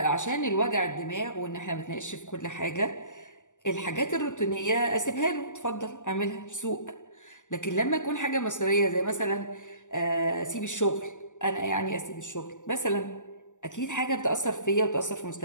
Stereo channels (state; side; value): late; right; 0.86 ms